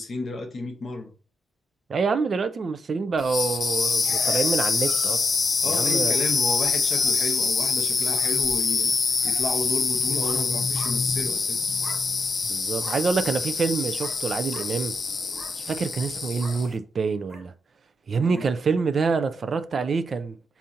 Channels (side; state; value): both; normal; correlation 0.82